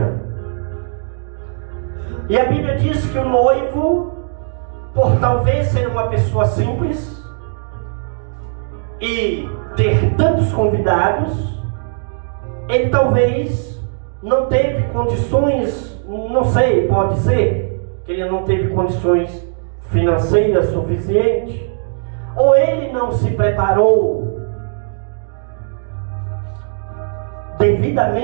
E a Bíblia diz que o noivo, por talvez ser uma pessoa simples e ter tantos convidados, ele talvez não teve condições, não sei, pode ser que ele não teve condições financeiras suficientes, ou ele não se preparou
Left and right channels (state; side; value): silent; left; digital silence